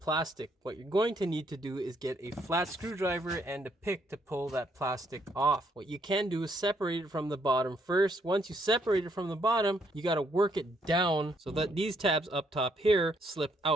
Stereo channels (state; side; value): normal; both; correlation 0.71